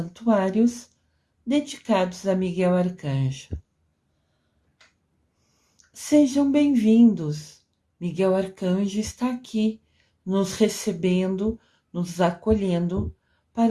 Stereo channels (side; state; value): both; identical; correlation 1.00